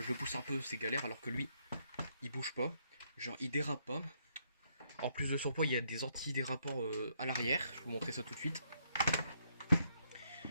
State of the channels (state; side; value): inverted; both; correlation -0.73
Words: le pousse un peu, c'est galère, alors que lui, il bouge pas, genre il dérape pas. En plus de son poids, il y a des anti-dérapants à l'arrière, je vais vous montrer ça tout de suite.